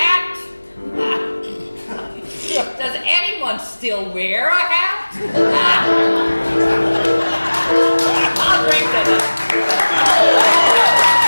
Does anyone still wear a hat? I'll drink to them.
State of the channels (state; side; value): inverted; both; correlation -1.00